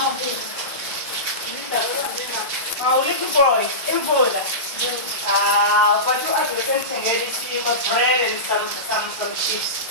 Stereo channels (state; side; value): normal; both; correlation -0.19